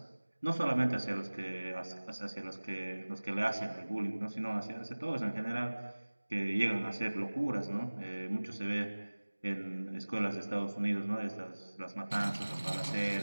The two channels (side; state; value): both; inverted; correlation -1.00